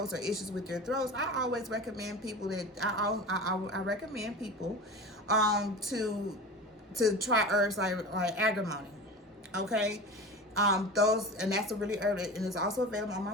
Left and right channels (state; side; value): normal; both; correlation 0.32